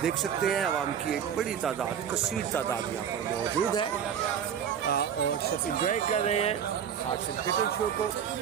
देख सकते हैं आवाम की एक बड़ी तादाद, कसीर तादाद यहाँ पर मौजूद है और सब इंजॉय कर रहे हैं हार्स एंड कैटल शो को।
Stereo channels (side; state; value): left; quieter; 8.4 dB